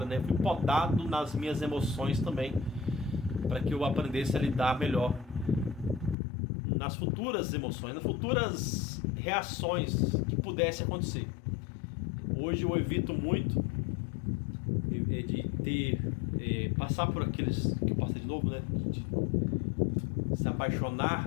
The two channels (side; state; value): right; drops out; at 6.2 s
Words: né? Fui podado nas minhas emoções também, para que eu aprendesse a lidar melhor nas futuras emoções, nas futuras reações que pudessem acontecer. Hoje eu evito muito de passar por aqueles que eu passei de novo, né? De se